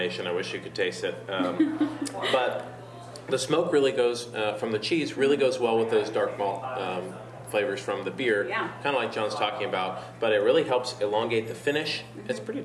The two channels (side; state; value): both; identical; correlation 1.00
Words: I wish you could taste it. But the smoke really goes, from the cheese, really goes well with those dark malt flavors from the beer, kind of like John's talking about, but it really helps elongate the finish. It's pretty